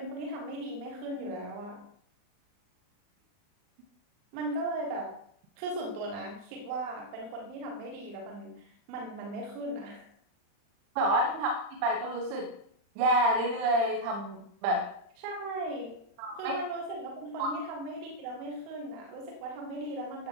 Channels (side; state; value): left; late; 40 ms